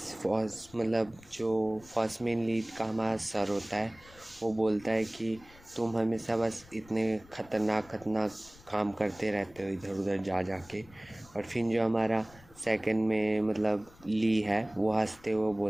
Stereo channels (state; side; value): noise; left; rumble, 24 dB below the sound